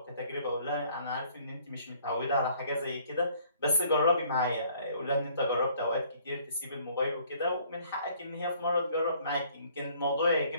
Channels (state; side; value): inverted; both; correlation -0.60